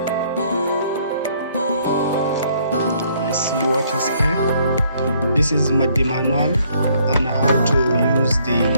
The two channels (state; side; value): inverted; both; correlation -0.65